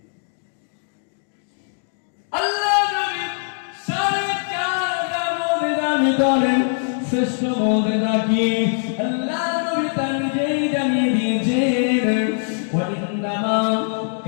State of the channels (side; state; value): right; silent; 63 dB below the other